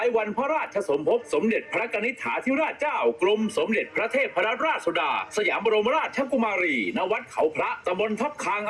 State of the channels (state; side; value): identical; both; correlation 1.00